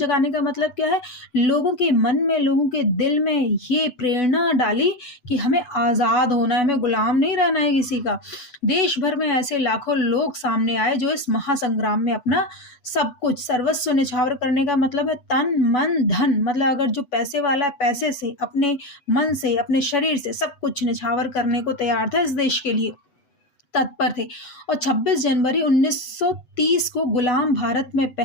का मतलब क्या है? लोगों के मन में, लोगों के दिल में ये प्रेरणा डाली कि हमें आज़ाद होना है, हमें गुलाम नहीं रहना है किसी का। देश भर में ऐसे लाखों लोग सामने आए जो इस महासंग्राम में अपना सब कुछ, सर्वस्व निछावर करने का मतलब है तन मन धन, मतलब अगर जो पैसे वाला है, पैसे से, अपने मन से, अपने शरीर से सब कुछ निछावर करने को तैयार था, इस देश के लिए तत्पर थे। और 26 जनवरी 1930 को गुलाम भारत में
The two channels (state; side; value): late; right; 8.1 ms